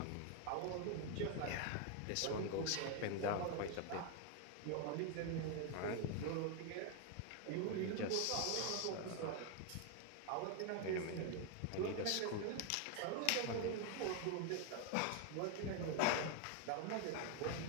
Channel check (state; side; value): different; both; correlation 0.01